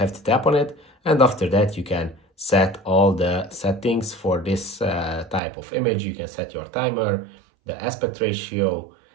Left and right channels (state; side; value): drops out; left; at 5.4 s